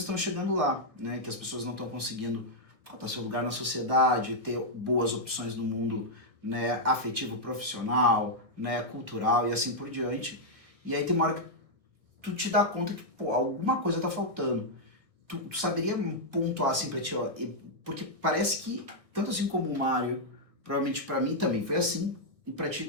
chegando lá, né? Que as pessoas não estão conseguindo faltar seu lugar na sociedade, ter boas opções no mundo, né, afetivo, profissional, né, cultural e assim por diante. E aí tem uma hora que tu te dá conta que, pô, alguma coisa tá faltando. Tu saberia pontuar assim pra ti, ó, porque parece que, tanto assim como o Mário, provavelmente pra mim também foi assim, e pra ti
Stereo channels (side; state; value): left; late; 1.6 ms